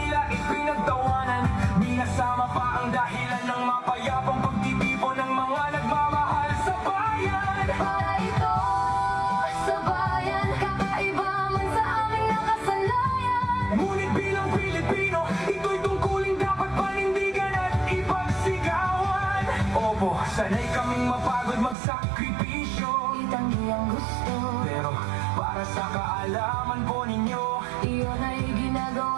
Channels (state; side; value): drops out; left; at 21.8 s